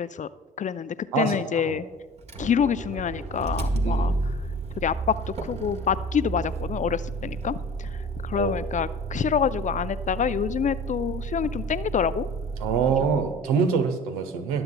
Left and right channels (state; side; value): normal; both; correlation 0.40